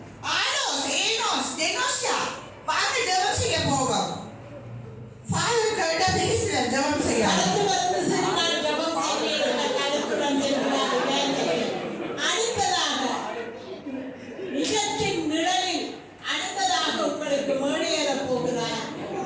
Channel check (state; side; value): identical; both; correlation 1.00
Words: ஆனோஸ் ஏனோஸ் டெனோஸ்யா வாங்க ஜெபம் செய்ய போவோம். ஃபாதர் கிட்ட பேசுற ஜெபம் செய்ய அடுத்து வந்து சரி நான் ஜெபம் செய்கிறேன் கருத்துடன் செல்கிறார்கள். அடுத்ததாக நிஜத்தின் நிழலில் அடுத்ததாக உங்களுக்கு மேடையேற போகிறார்